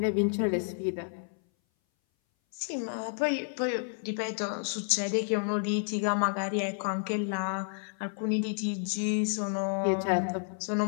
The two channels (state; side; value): silent; right; 57 dB below the other